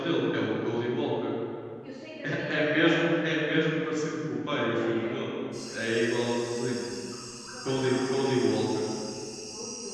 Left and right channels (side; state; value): both; identical; correlation 1.00